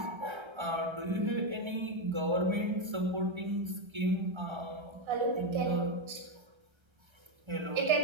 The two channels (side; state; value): left; late; 1.3 ms